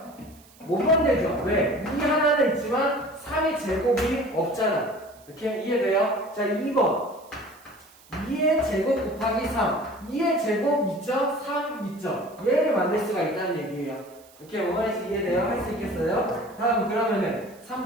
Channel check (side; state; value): right; noise; hiss, 26 dB below the sound